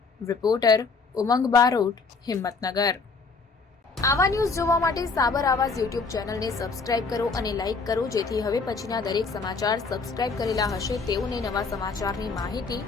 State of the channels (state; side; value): quieter; right; 4.4 dB